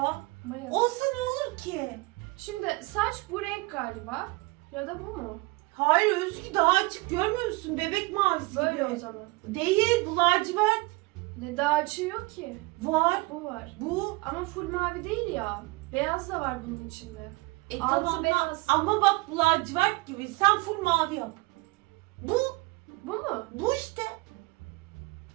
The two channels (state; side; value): quieter; left; 23.7 dB